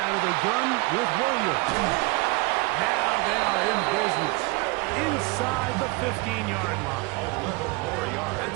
of the gun with Williams. Now they are in business inside the 15-yard line. 11 more yards.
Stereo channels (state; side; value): quieter; left; 25.2 dB